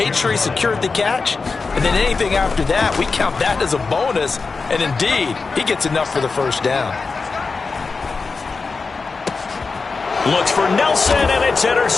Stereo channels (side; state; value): right; quieter; 4.4 dB